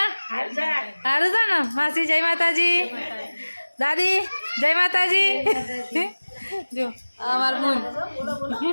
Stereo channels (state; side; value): inverted; both; correlation -1.00